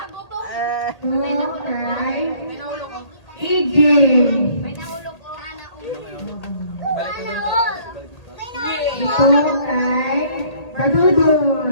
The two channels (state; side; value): late; right; 1.8 ms